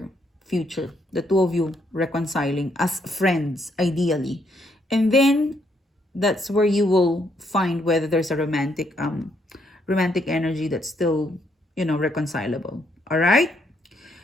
future, the two of you reconciling as friends, ideally. And then that's where you will find whether there's a romantic energy that's still, reconcilable. All right?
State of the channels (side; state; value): both; normal; correlation 0.73